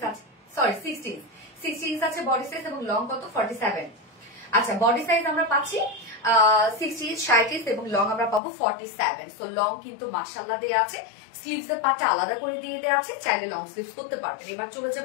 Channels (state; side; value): drops out; right; at 8.4 s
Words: আছে, সরি 60 ইঞ্চ আছে বডি সাইজ, এবং লং কত 47। আচ্ছা, বডি সাইজ আমরা পাচ্ছি 60 ইঞ্চ 60 ইঞ্চ, এবং লং আমরা পাবো 47। সো লং কিন্তু মাশাআল্লাহ দেয়া আছে, স্লিভস এর পাটটা আলাদা করে দিয়ে দেওয়া আছে, চাইলে লং স্লিভস করতে পারবেন। এবার চলে